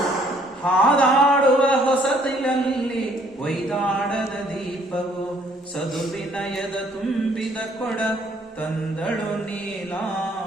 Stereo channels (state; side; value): normal; both; correlation 0.63